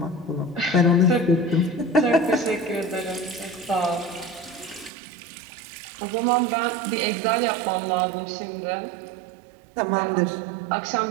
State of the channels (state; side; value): drops out; left; at 4.9 s